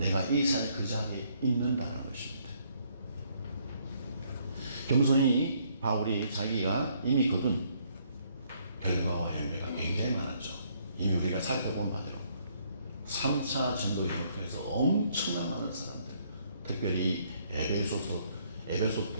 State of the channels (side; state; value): both; inverted; correlation -0.68